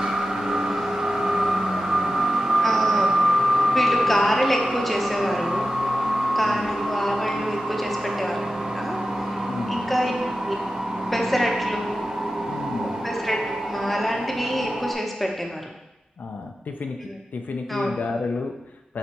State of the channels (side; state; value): both; normal; correlation 0.93